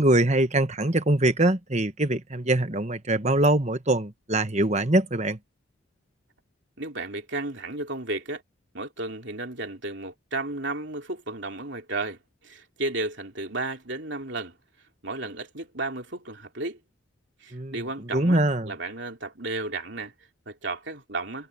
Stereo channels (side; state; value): both; normal; correlation 0.44